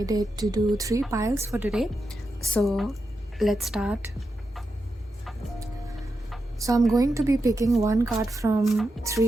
to do 3 piles for today. So let's start. So I'm going to be picking one card from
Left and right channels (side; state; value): both; normal; correlation 0.87